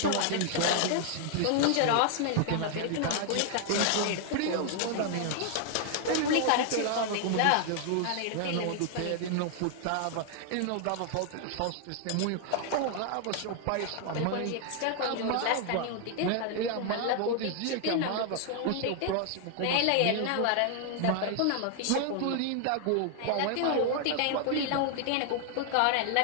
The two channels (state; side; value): different; both; correlation 0.00